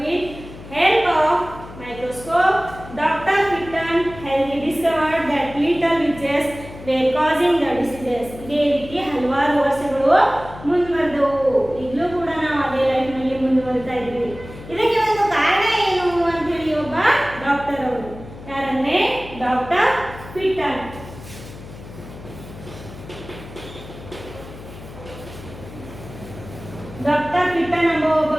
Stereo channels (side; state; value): left; noise; hum, 15 dB below the sound